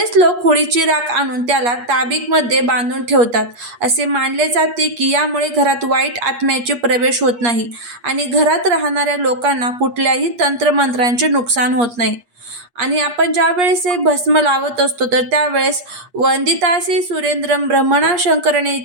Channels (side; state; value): left; late; 8.4 ms